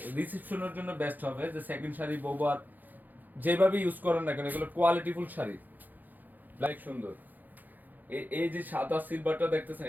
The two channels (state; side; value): late; left; 0.084 ms